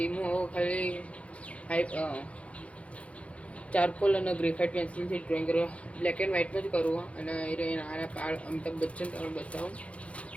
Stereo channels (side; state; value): right; late; 0.063 ms